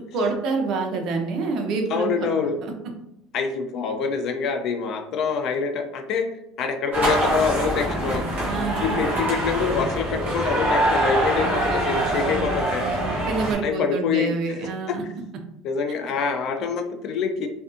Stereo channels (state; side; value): normal; both; correlation 0.48